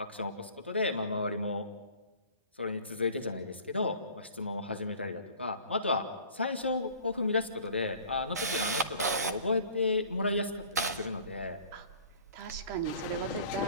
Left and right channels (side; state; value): both; inverted; correlation -0.47